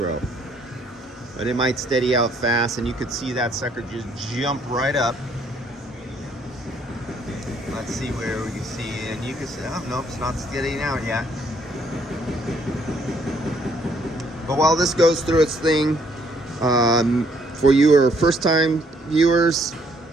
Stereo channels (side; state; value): both; normal; correlation 0.67